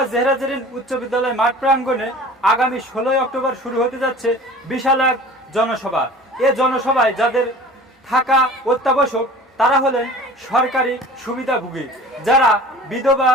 জেহরা জেরিন উচ্চ বিদ্যালয় মাঠ প্রাঙ্গণে আগামী 16 অক্টোবর শুরু হতে যাচ্ছে বিশাল এক জনসভা। এ জনসভায় যাদের থাকা অত্যাবশ্যক তারা হলেন সরকারি সুবিধাভোগী, যারা বিধবা,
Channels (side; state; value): both; normal; correlation 0.43